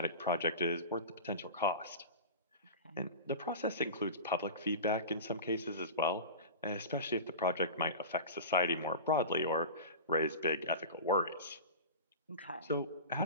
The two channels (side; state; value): both; inverted; correlation -0.31